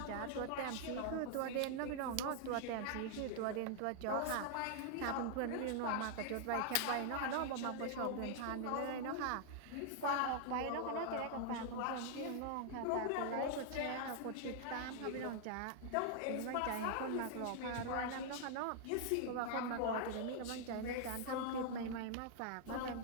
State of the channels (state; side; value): different; both; correlation 0.00